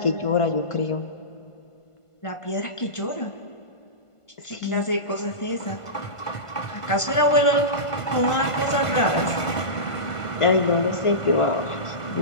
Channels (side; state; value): right; late; 1.5 ms